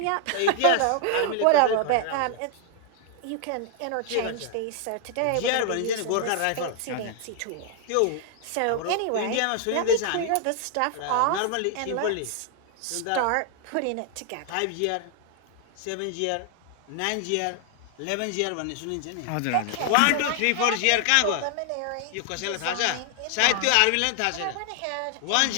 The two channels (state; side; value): different; both; correlation 0.00